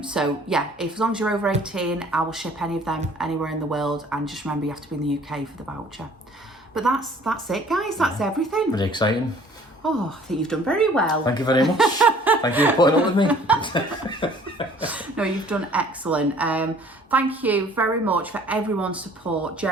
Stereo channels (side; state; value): both; normal; correlation 0.54